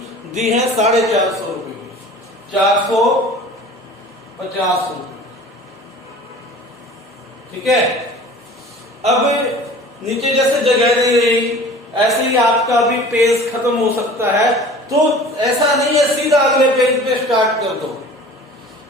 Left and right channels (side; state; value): both; normal; correlation 0.43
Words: दी है, 450 रुपए की, 450 रुपए। ठीक है। अब नीचे जैसे जगह नहीं रही, ऐसे ही आपका भी पेज खत्म हो सकता है, तो ऐसा नहीं है सीधा अगले पेज पे स्टार्ट कर दो।